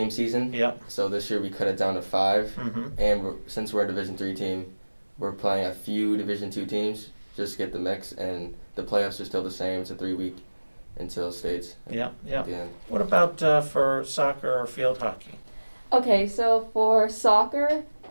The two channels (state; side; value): inverted; both; correlation -1.00